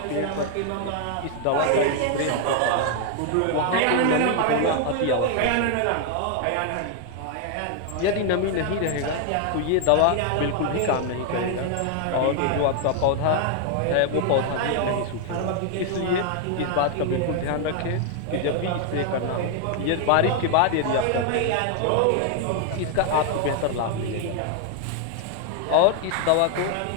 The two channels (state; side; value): different; both; correlation 0.00